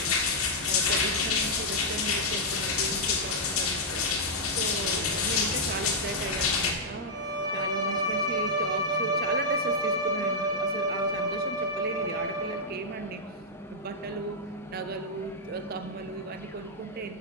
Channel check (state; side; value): normal; both; correlation -0.05